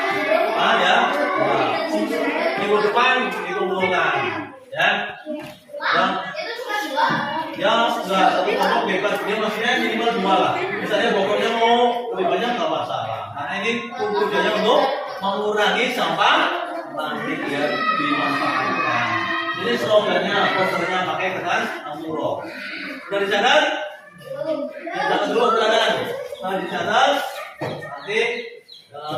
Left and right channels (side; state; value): both; identical; correlation 1.00